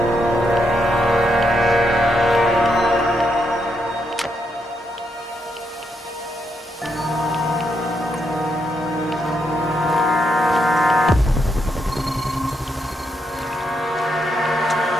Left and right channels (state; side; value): normal; both; correlation 0.80